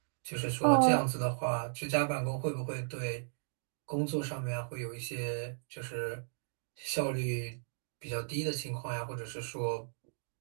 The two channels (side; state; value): left; silent; digital silence